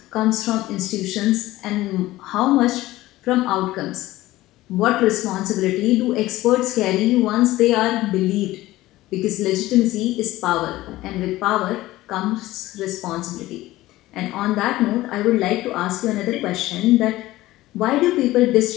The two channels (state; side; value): quieter; right; 17.0 dB